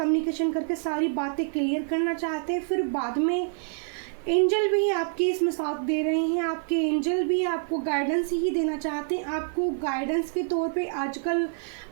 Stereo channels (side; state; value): left; silent; 60 dB below the other